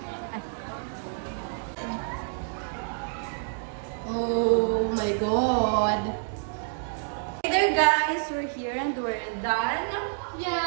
Ay. Oh my God. Hey there guys, we're here and we're done.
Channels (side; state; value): left; silent; digital silence